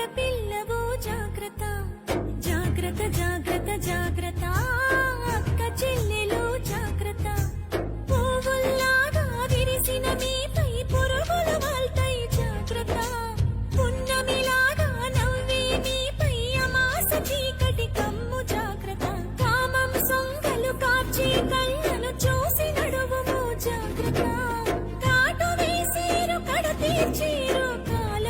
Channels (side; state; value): both; identical; correlation 1.00